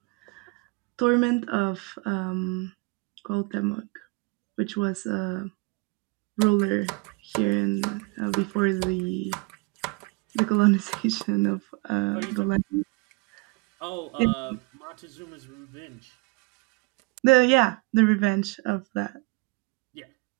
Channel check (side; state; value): left; quieter; 28.3 dB